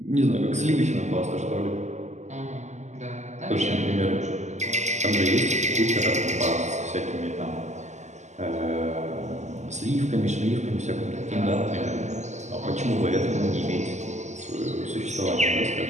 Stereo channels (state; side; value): late; left; 0.34 ms